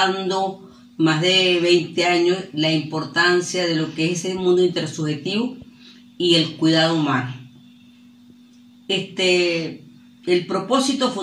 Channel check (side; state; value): both; identical; correlation 1.00